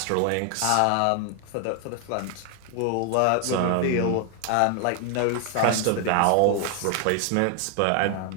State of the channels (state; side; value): different; both; correlation 0.00